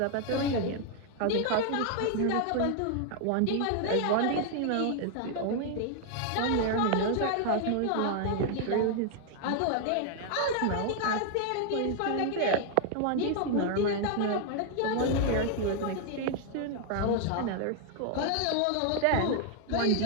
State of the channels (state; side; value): different; both; correlation 0.00